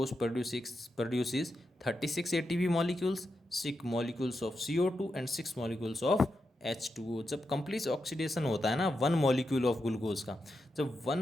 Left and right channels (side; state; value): both; normal; correlation 0.87